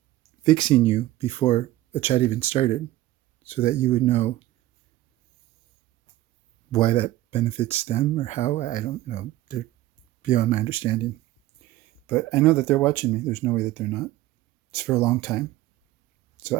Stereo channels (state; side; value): quieter; left; 15.8 dB